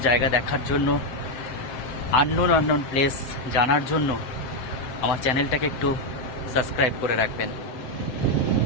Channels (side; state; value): right; late; 7.7 ms